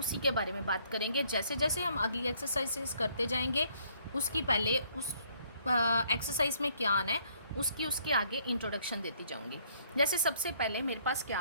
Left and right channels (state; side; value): inverted; both; correlation -0.65